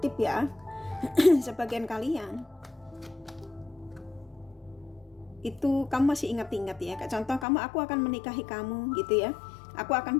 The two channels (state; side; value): drops out; right; at 7.5 s